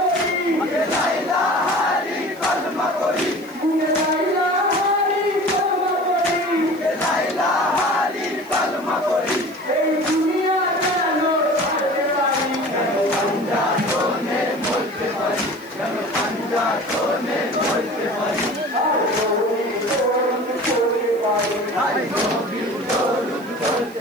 হারি কলমা পড়ি, মুখে লা ইলাহারি কলমা পড়ি, মুখে লাইলা হারি কলমা পড়ি। মুখে লা ইলাহারি কলমা পড়ি। এই দুনিয়া যেন ছাড়তে পারি, যেন পাঞ্জাতনে মরতে পারি, যেন পাঞ্জাতনে মরতে পারি। আর নবীর দরুদ পড়তে পারি, আর নবীর দরুদ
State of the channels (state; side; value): noise; right; hiss, 25 dB below the sound